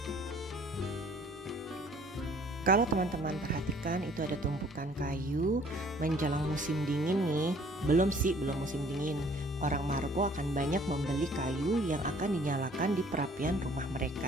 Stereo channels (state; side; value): normal; both; correlation 0.56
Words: Kalau teman-teman perhatikan itu ada tumpukan kayu menjelang musim dingin nih. Belum musim dingin. Orang Maroko akan banyak membeli kayu yang akan dinyalakan di perapian rumah